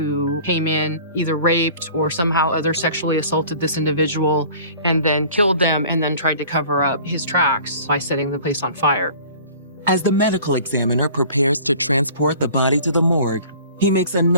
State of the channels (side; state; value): both; inverted; correlation -0.46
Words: came in, either raped or somehow other sexually assaulted this individual and then killed them and then tried to cover up his tracks by setting the place on fire? As the medical examiner prepares to transport the body to the morgue, he makes